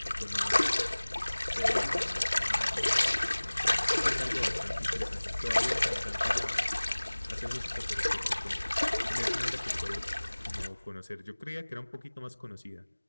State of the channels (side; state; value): both; inverted; correlation -1.00